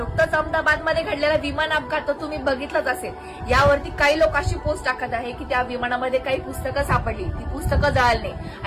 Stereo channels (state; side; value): identical; both; correlation 1.00